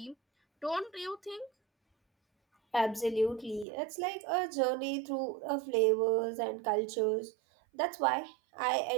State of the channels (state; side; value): drops out; left; at 3.7 s